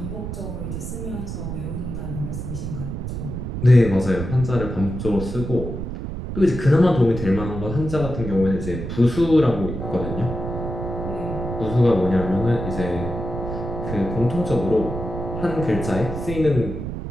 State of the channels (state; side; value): noise; right; rumble, 6 dB below the sound